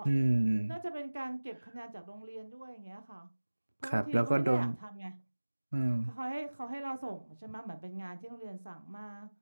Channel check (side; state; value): both; inverted; correlation -1.00